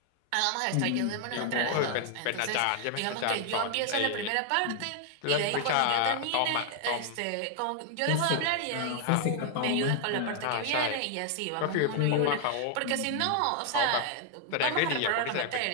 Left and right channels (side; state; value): both; different; correlation 0.00